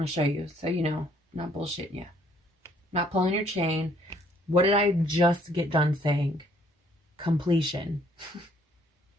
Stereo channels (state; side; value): normal; both; correlation 0.64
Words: going to show you so you know, I'm not bullshitting you. Not pulling your chain. What did I just get done saying? Completion.